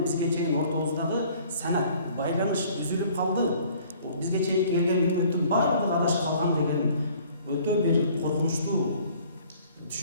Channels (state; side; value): inverted; both; correlation -0.55